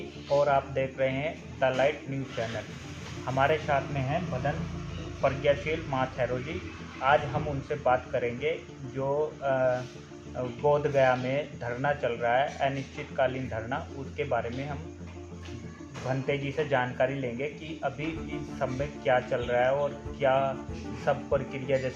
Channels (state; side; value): identical; both; correlation 1.00